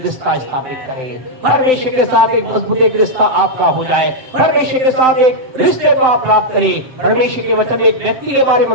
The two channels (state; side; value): late; left; 7.8 ms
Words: रिश्ता स्थापित करें, परमेश्वर के साथ एक मजबूत एक रिश्ता आपका हो जाए, परमेश्वर के साथ एक रिश्ते को आप प्राप्त करें। परमेश्वर के वचन में एक व्यक्ति के बारे